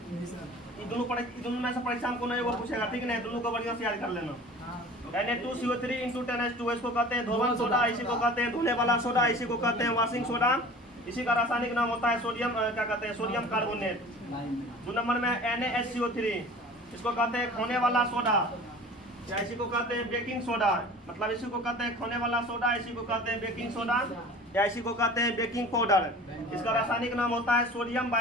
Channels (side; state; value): both; normal; correlation 0.42